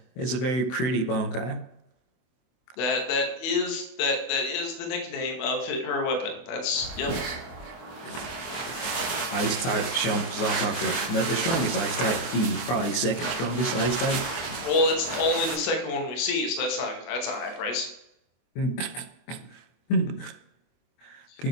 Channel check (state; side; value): late; right; 24 ms